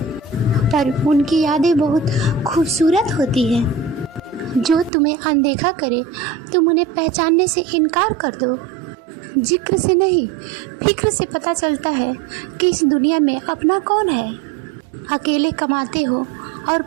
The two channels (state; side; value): drops out; left; at 4.9 s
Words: पर उनकी यादें बहुत खूबसूरत होती हैं। जो तुम्हें अनदेखा करे, तुम उन्हें पहचानने से इनकार कर दो। जिक्र से नहीं, फिक्र से पता चलता है कि इस दुनिया में अपना कौन है। अकेले कमाते हो और